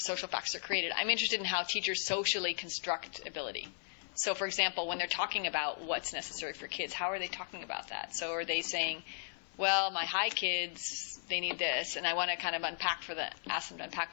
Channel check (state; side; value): silent; right; 54 dB below the other